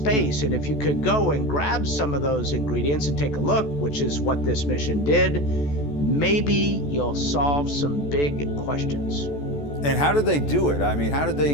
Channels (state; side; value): late; right; 14 ms